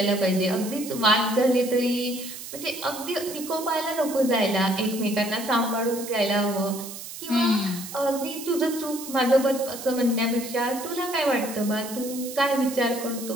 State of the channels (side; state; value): right; noise; hiss, 11 dB below the sound